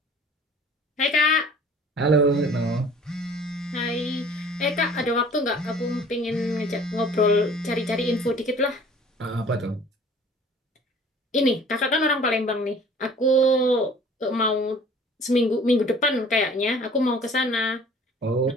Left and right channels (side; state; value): both; normal; correlation 0.50